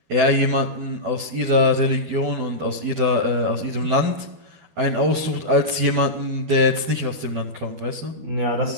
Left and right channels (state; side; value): late; left; 12 ms